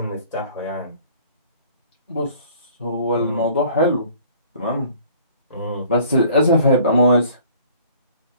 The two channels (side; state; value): both; inverted; correlation -0.54